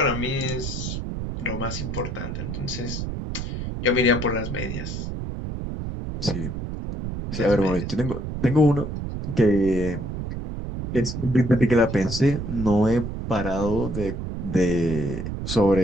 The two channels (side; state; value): right; noise; rumble, 5 dB below the sound